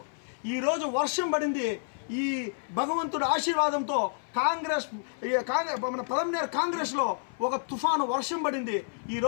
ఈరోజు వర్షం పడింది. ఈ భగవంతుడి ఆశీర్వాదంతో మన పలమనేరు కాంగ్రెస్లో ఒక తుఫాను వర్షం పడింది.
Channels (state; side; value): silent; right; 58 dB below the other